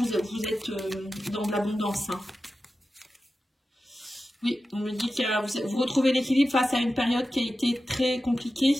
êtes dans de l'abondance. Hein. Oui, on me dit que vous retrouvez l'équilibre face à une période qui a été très compliquée.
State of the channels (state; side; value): normal; both; correlation 0.93